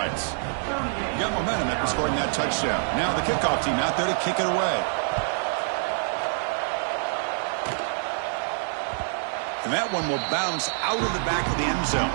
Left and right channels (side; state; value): left; silent; digital silence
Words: You got momentum after scoring that touchdown. Now the kickoff team out there to kick it away. And that one will bounce out of the back of the end zone.